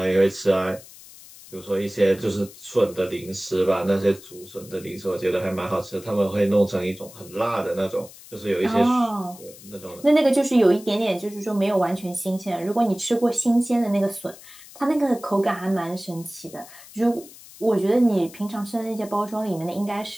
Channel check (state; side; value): noise; left; hiss, 19 dB below the sound